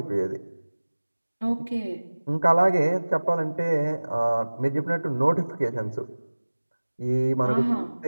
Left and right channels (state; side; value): inverted; both; correlation -1.00